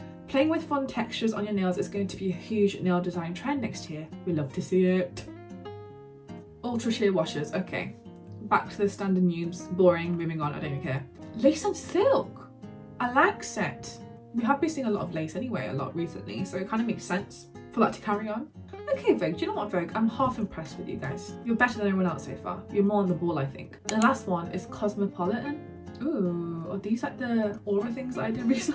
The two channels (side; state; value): both; identical; correlation 1.00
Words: Playing with fun textures on your nails is going to be a huge nail design trend next year. We love to see it. Ultra sheer washes. Okay, back to the standard noobs. Boring. Moving on. I don't even care. Lace and silk. I like set. We have been seeing a lot of lace anyway, a lot recently, so it kind of makes sense for that to carry on. Okay, Vogue, do you know what, Vogue? I'm half impressed with you guys. You're better than everyone else so far. You're more on the ball, I think. The last one is Cosmopolitan. Ooh, are these like the aura things that I did